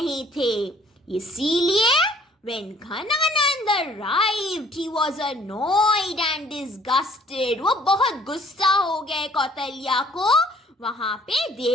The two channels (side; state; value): both; normal; correlation 0.58